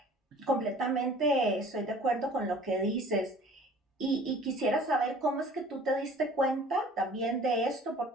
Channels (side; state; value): both; normal; correlation 0.49